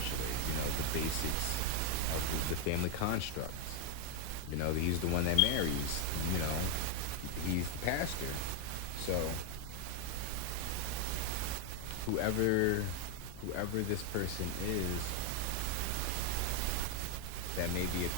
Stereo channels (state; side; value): different; both; correlation 0.01